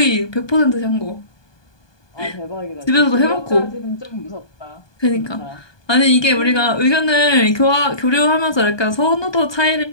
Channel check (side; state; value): right; late; 1.2 ms